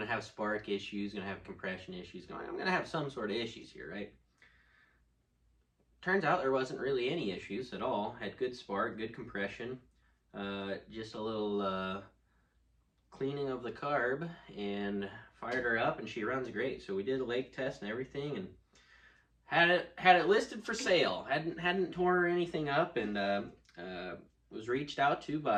have spark issues, gonna have compression issues, I'm gonna have some sort of issues here, right? Turns out there wasn't really any issues at all. Had good spark, good compression, just a little cleaning of the carb, and fired her up, and she runs great. So we did a lake test and everything, and had it listed for sale. Hadn't tore anything up, and was reached out to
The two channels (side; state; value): both; identical; correlation 1.00